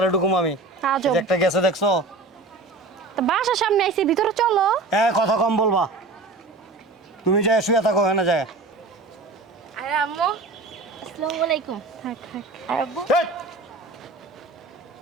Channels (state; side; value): quieter; left; 3.4 dB